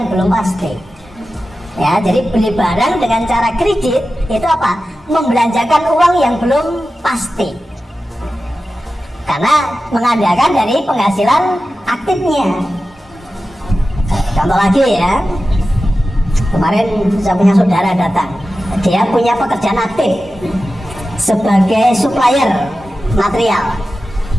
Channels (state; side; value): normal; both; correlation 0.93